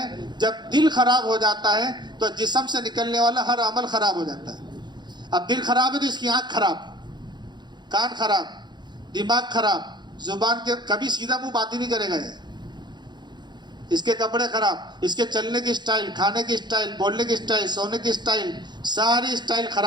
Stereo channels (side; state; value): left; late; 0.21 ms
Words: جب دل خراب ہو جاتا ہے تو جسم سے نکلنے والا ہر عمل خراب ہو جاتا ہے. اب دل خراب ہے تو اس کی آنکھ خراب، کان خراب، دماغ خراب، زبان کے کبھی سیدھا منہ بات ہی نہیں کرے گا. اس کے کپڑے خراب، اس کے چلنے کی سٹائل، کھانے کی سٹائل، بولنے کی سٹائل، سونے کی سٹائل، ساری سٹائل